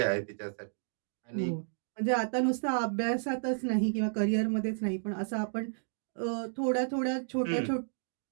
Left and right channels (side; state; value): left; silent; digital silence